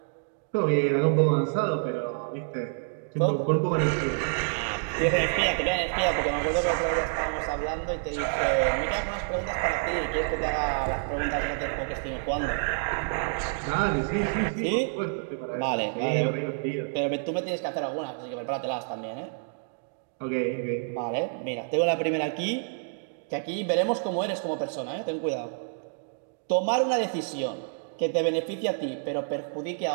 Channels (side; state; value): left; silent; digital silence